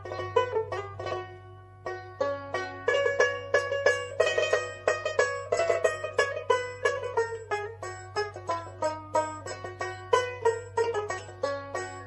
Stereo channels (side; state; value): both; identical; correlation 1.00